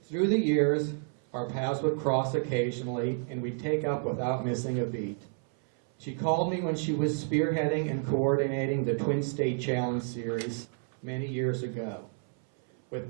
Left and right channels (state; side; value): silent; left; 58 dB below the other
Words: Through the years, our paths would cross occasionally and we'd take up without missing a beat. She called me when she was spearheading and coordinating the Twin State Challenge Series many years ago. With